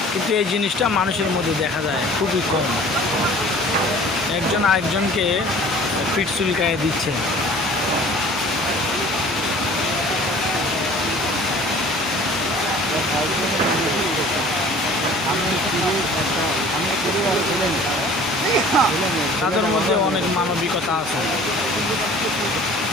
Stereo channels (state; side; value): normal; both; correlation 0.48